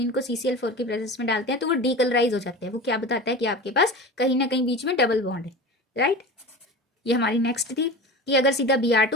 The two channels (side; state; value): both; normal; correlation 0.31